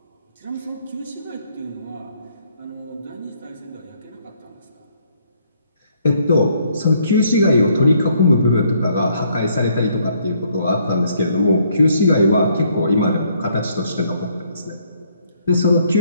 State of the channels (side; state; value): both; inverted; correlation -0.68